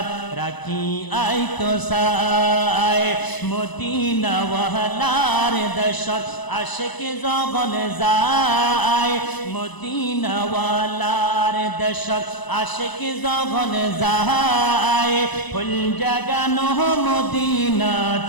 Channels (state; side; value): late; right; 1.0 ms